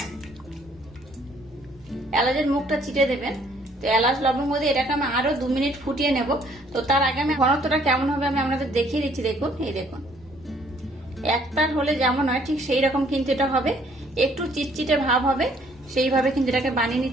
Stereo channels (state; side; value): normal; both; correlation 0.63